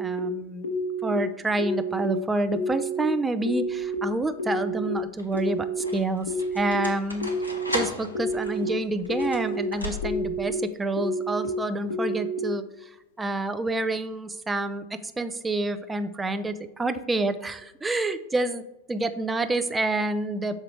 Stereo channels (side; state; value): both; normal; correlation 0.61